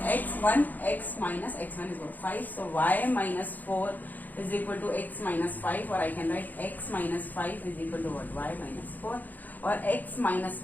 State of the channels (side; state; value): right; late; 0.083 ms